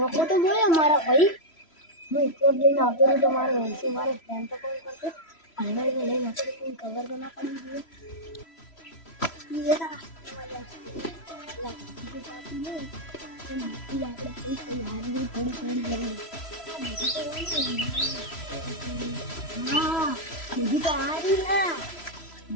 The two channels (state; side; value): late; right; 3.0 ms